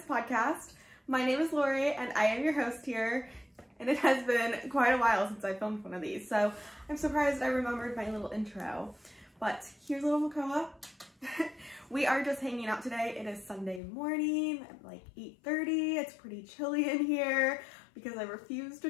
podcast. My name is Lori and I am your host here, and it has been quite a while since I filmed one of these, so I'm surprised I remembered my little intro. But here's little Makoa. We are just hanging out today. It is Sunday morning at like 8:30. It's pretty chilly in here because I refuse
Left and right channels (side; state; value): right; drops out; at 13.8 s